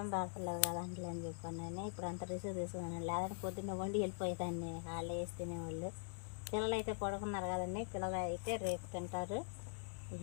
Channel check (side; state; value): right; silent; digital silence